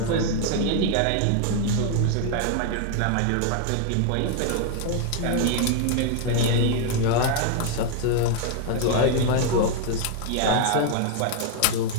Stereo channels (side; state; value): both; different; correlation 0.00